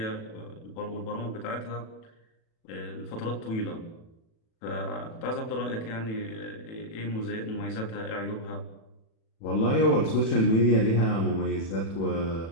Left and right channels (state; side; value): late; right; 36 ms